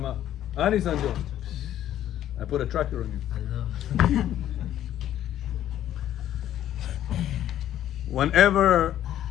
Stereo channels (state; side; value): quieter; right; 11.8 dB